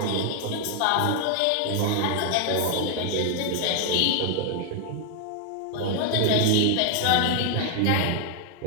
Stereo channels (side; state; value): both; different; correlation 0.00